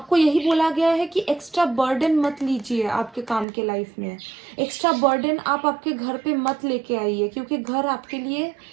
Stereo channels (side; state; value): left; drops out; at 3.5 s